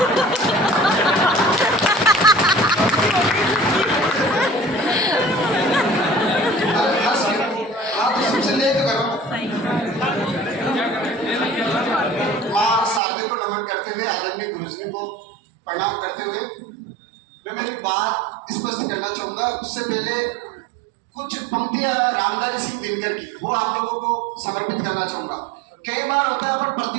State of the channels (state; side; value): drops out; left; at 13.0 s